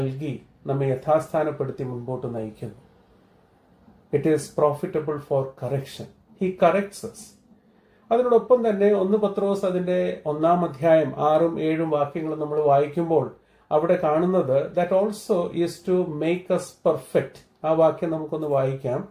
നമ്മെ യഥാസ്ഥാനപ്പെടുത്തി മുൻപോട്ട് നയിക്കുന്നു. It is profitable for correction. He corrects us. അതിനോടൊപ്പം തന്നെ 1 പത്രോസ് അതിന്റെ 1-ാം അധ്യായം 6ഉം 7ഉം വാക്യങ്ങൾ നമ്മൾ വായിക്കുമ്പോൾ അവിടെ കാണുന്നത് that also is to make us perfect. ആ വാക്യം നമുക്കൊന്ന് വായിക്കാം.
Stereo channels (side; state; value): both; identical; correlation 1.00